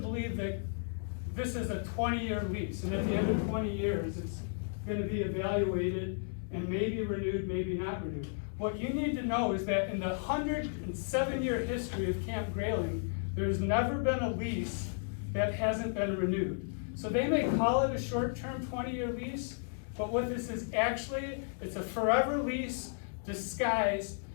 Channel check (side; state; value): right; silent; digital silence